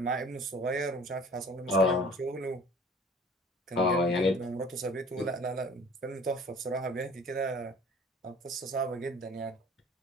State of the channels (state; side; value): normal; both; correlation 0.48